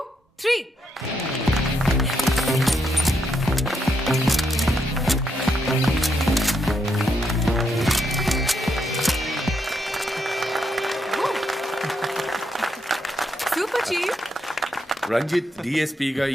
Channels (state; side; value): normal; both; correlation 0.79